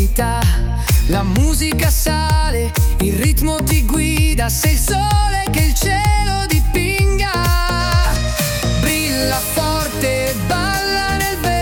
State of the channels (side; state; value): both; identical; correlation 1.00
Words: La musica sale, il ritmo ti guida, sei il sole che il cielo dipinga. Brilla forte, balla nel